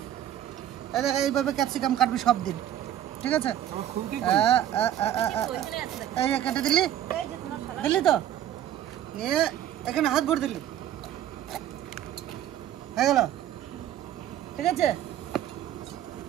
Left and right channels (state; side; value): quieter; left; 11.4 dB